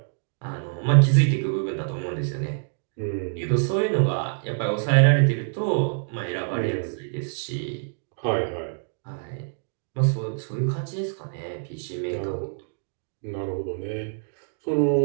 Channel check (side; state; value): left; silent; digital silence